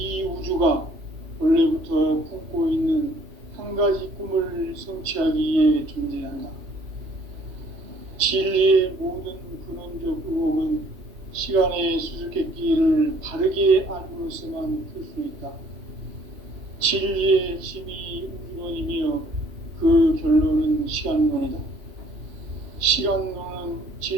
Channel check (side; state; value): left; late; 2.8 ms